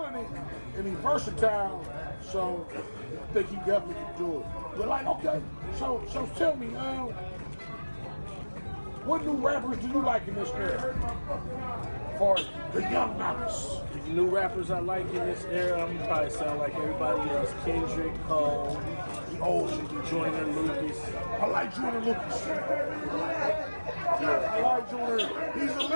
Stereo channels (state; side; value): inverted; both; correlation -1.00